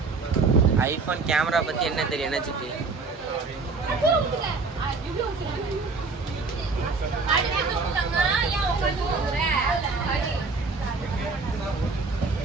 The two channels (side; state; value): left; quieter; 4.2 dB